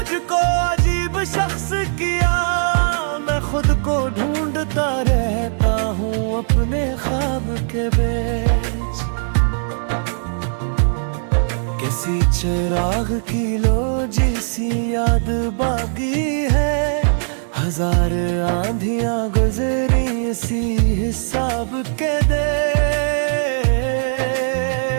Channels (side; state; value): left; silent; digital silence